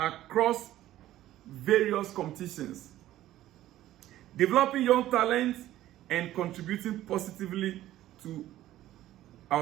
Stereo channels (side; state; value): left; quieter; 14.0 dB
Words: various competitions, developing young talent, and contributing positively to